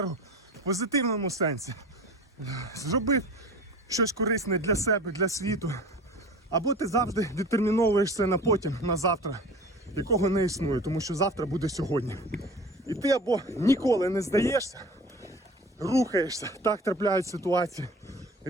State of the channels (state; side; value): normal; both; correlation 0.39